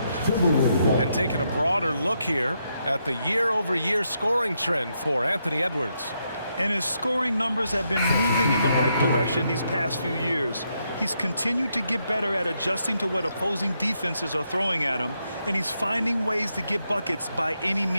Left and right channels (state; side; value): inverted; both; correlation -0.80